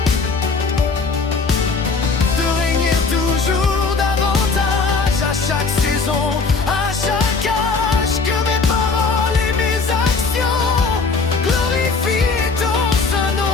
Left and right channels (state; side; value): quieter; right; 4.4 dB